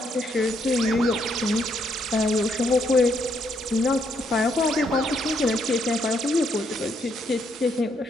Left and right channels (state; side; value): normal; both; correlation 0.74